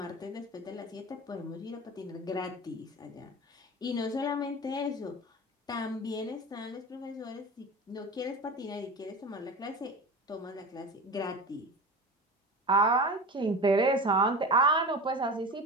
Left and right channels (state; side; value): normal; both; correlation 0.31